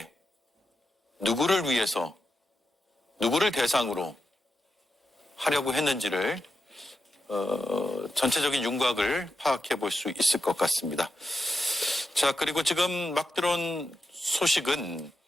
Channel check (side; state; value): both; normal; correlation 0.87